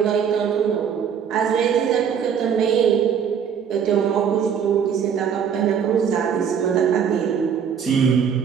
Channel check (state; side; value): quieter; left; 7.6 dB